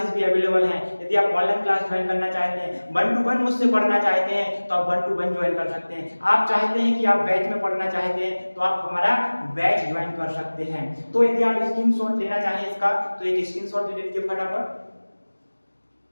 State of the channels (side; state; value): both; inverted; correlation -1.00